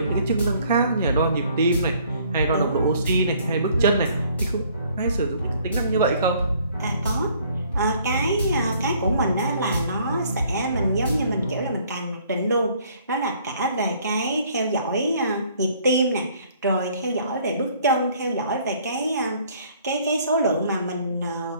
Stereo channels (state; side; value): inverted; both; correlation -0.60